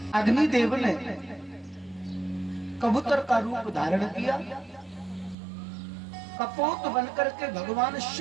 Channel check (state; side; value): drops out; left; at 5.4 s